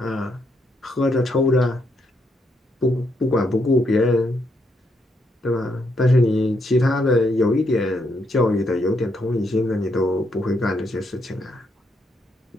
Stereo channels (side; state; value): both; normal; correlation 0.77